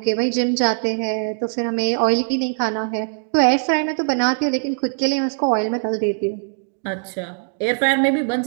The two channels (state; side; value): silent; left; digital silence